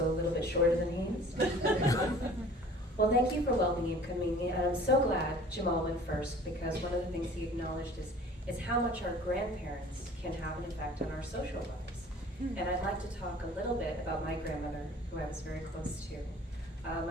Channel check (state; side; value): normal; both; correlation 0.48